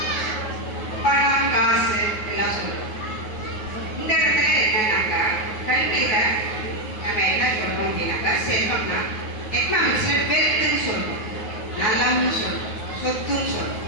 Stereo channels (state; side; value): late; right; 9.4 ms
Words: பணம், காசு எல்லாம் சொல்லுவோம். இந்த இடத்துல என்னன்னாக்கா கல்வியில நம்ம என்ன சொல்றோம் அப்படின்னாக்கா செல்வம்னா எக்கனாமிக்ஸ்ல வெல்த்னு சொல்றோம், நலம்னு சொல்றோம், சொத்துன்னு சொல்றோம்.